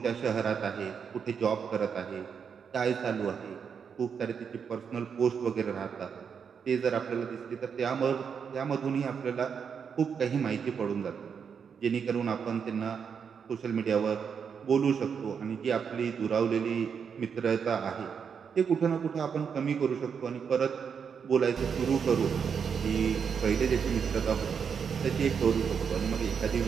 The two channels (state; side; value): quieter; left; 6.7 dB